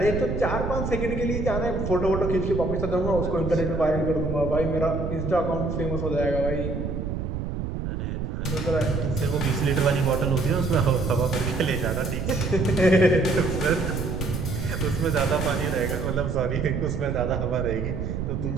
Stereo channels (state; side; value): noise; right; rumble, 3 dB below the sound